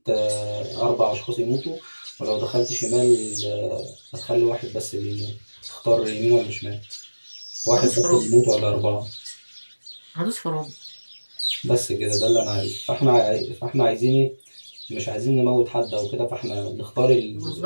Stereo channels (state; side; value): inverted; both; correlation -1.00